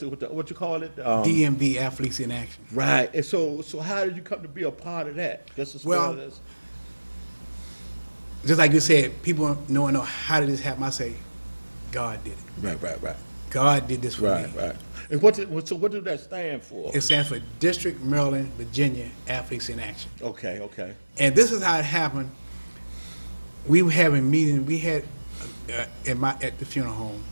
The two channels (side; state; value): both; inverted; correlation -1.00